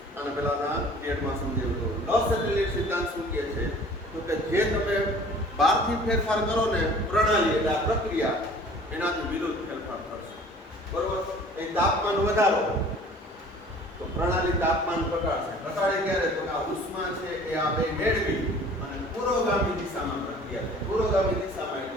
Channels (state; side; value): normal; both; correlation 0.49